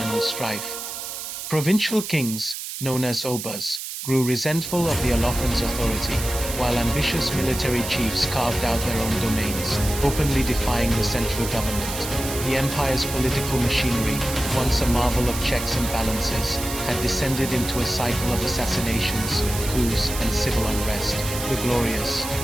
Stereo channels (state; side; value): noise; right; hiss, 7 dB below the sound